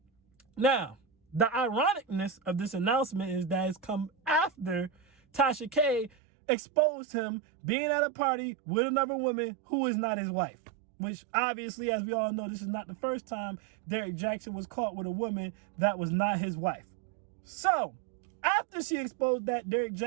Now, the ironicness of this announcement is that it's come after Tasha K exposed him being at a party with another woman who is not his wife. Which obviously, as we all know, this is not the first time Derrick Jaxn was caught with a woman that was not his wife. So, after she exposed that, Derrick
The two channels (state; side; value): drops out; left; at 6.1 s